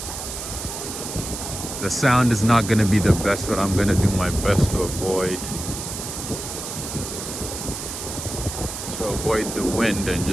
The sound is not going to be the best, but I'm going to do my best to avoid the wind and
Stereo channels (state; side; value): noise; right; hiss, 7 dB below the sound